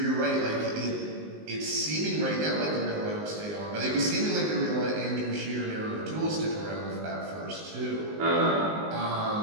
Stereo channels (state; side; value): late; left; 19 ms